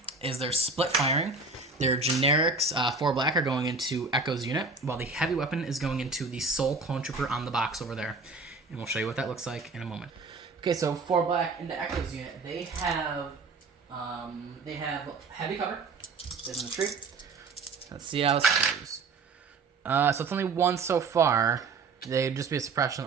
is they're split firing. Their generics, 4 black, are going into Echo's unit, while the heavy weapon is going into the sole clone trooper on the box over there. And we'll show you what that looks like in a moment. Okay, so 4 black into Echo's unit. They have heavy cover. There's in the tree. Let's see how this goes. So it's only 1 so far. They'd just be a suppression,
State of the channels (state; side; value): quieter; left; 4.1 dB